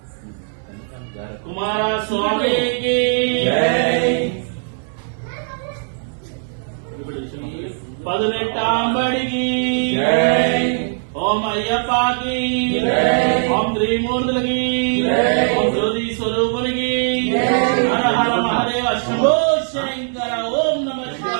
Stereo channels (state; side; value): silent; left; 64 dB below the other